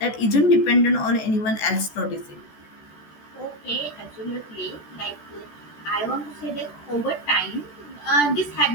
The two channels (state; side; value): late; right; 14 ms